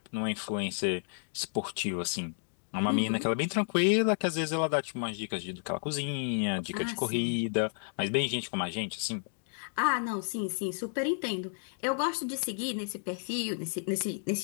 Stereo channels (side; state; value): right; silent; digital silence